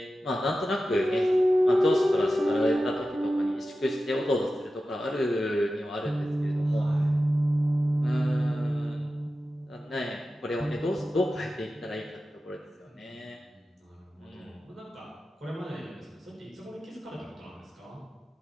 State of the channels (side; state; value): both; normal; correlation 0.93